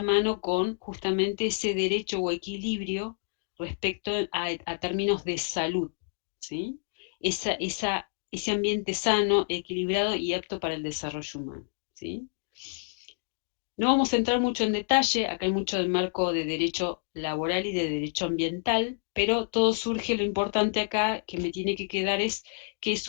mano con justamente ese derecho o equilibrio respecto a términos de salud, ¿sí? Ese ambiente sano, equilibrado y apto para el desarrollo humano, ¿sí? No vamos a entrar mucho en detalle, acá hay mucho del marco de derecho laboral y de derecho ambiental, pero todo surge, lo importante acá que me tiene que quedar es que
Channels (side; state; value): right; silent; digital silence